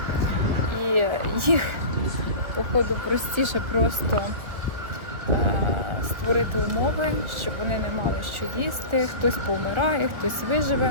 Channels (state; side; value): late; left; 1.6 ms